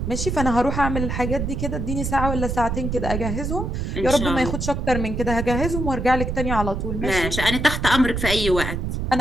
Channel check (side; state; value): right; noise; rumble, 3 dB below the sound